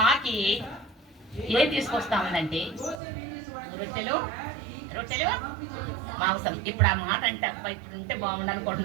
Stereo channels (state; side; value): drops out; left; at 3.0 s